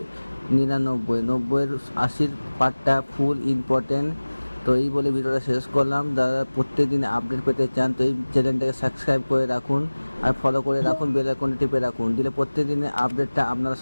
99, 90-80 পার্টটা ফুল ইম্পর্টেন্ট। তো এই বলে ভিডিওটা শেষ করলাম। যারা প্রত্যেকদিন আপডেট পেতে চান তো এই চ্যানেলটাকে সাবস্ক্রাইব করে রাখুন আর ফলো করে রাখুন, বেল আইকনটি টিপে রাখুন, দিলে প্রত্যেকদিনের আপডেটটা আপনারা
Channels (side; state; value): both; inverted; correlation -1.00